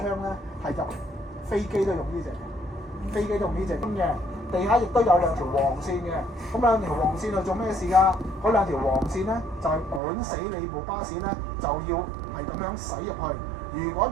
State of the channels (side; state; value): left; drops out; at 10.0 s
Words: 咧係入飛機都用呢隻，飛機都用呢隻嘅。地下亦都有兩條黃線嘅，咁兩條黃線係做咩事㗎？嗰兩條黃線咧就係管死你部巴士咧，就要係咁樣駛入去。如果